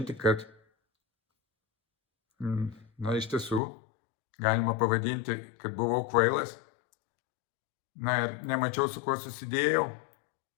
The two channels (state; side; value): drops out; right; at 3.6 s